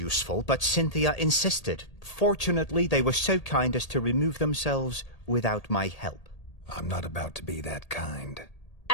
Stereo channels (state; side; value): late; right; 1.8 ms